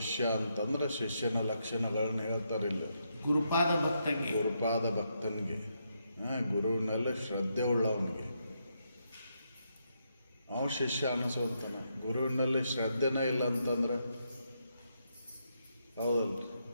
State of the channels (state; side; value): inverted; both; correlation -0.80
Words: ಅಂತಂದ್ರೆ ಶಿಷ್ಯನ ಲಕ್ಷಣಗಳನ್ನ ಹೇಳ್ತಾರಿಲ್ಲ. ಗುರುಪಾದ ಭಕ್ತಂಗೆ, ಗುರುಪಾದ ಭಕ್ತನಿಗೆ, ಗುರುವಿನಲ್ಲಿ ಶ್ರದ್ಧೆ ಉಳ್ಳವನಿಗೆ ಅವ ಶಿಷ್ಯ ಅನಿಸೋಂತಾನ. ಗುರುವಿನಲ್ಲಿ ಶ್ರದ್ಧೆನೇ ಇಲ್ಲ ಅಂತಂದ್ರೆ ಹೌದಲ್ಲ?